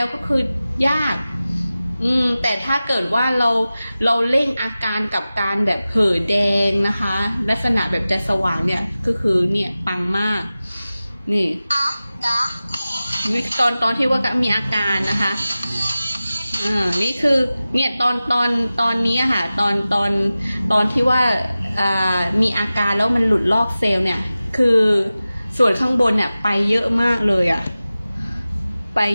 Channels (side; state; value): both; inverted; correlation -0.96